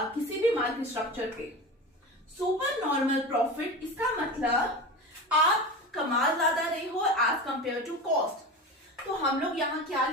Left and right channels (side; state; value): both; normal; correlation 0.28